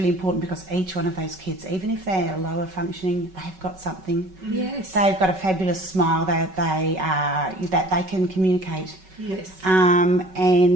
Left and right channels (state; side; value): late; left; 5.3 ms